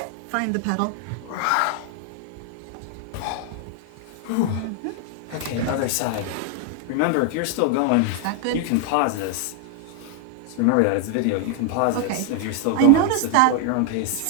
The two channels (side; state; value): both; different; correlation 0.00